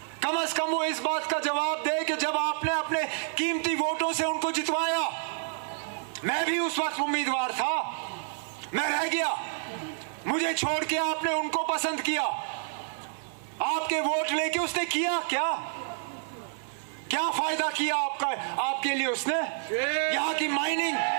कम से कम वो इस बात का जवाब दे कि जब आपने अपने कीमती वोटों से उनको जितवाया, मैं भी उस वक्त उम्मीदवार था, मैं रह गया, मुझे छोड़ के आपने उनको पसंद किया, आपके वोट लेके उसने किया क्या? क्या फायदा किया आपका, आपके लिए उसने? यहाँ की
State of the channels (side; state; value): left; silent; 59 dB below the other